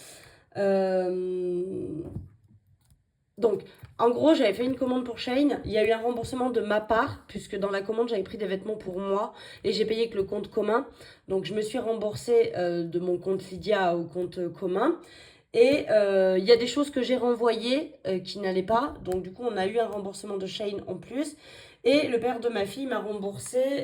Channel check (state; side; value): identical; both; correlation 1.00